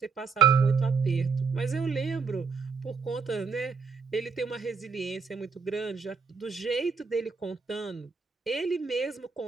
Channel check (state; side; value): quieter; left; 5.3 dB